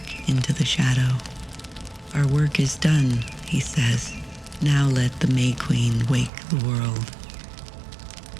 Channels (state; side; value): drops out; left; at 6.3 s